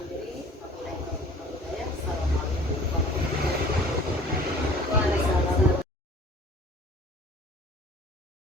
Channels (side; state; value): both; normal; correlation 0.48